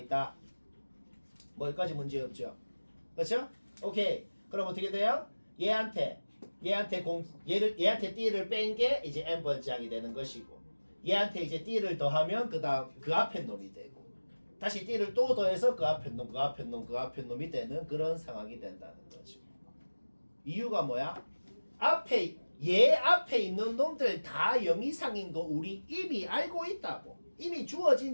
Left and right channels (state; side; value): inverted; both; correlation -1.00